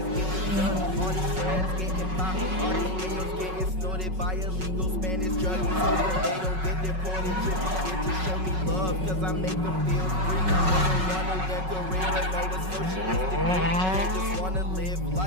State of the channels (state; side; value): late; left; 5.4 ms